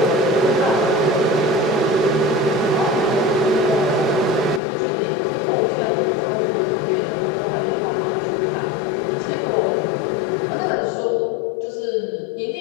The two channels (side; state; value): right; drops out; at 4.6 s